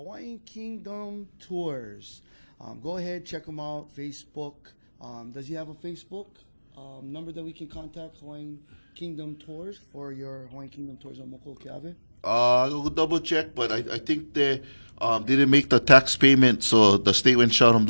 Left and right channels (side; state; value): both; inverted; correlation -1.00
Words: Kingdom Tours. Go ahead, check them out. Facebook. Does he have a Facebook number that we can contact Hawaiian Kingdom Tours for your Hawaiian Kingdom Tours on Moko Keawe? I'll double check, but I think they didn't make the tax payment, so the state went shut them